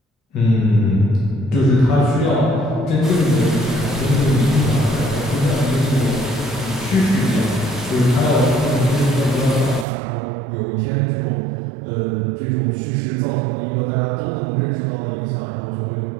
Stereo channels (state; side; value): drops out; left; at 9.9 s